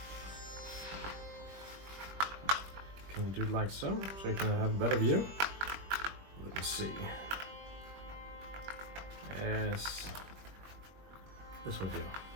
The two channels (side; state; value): left; late; 21 ms